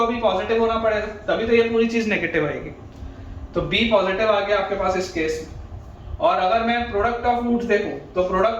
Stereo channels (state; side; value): identical; both; correlation 1.00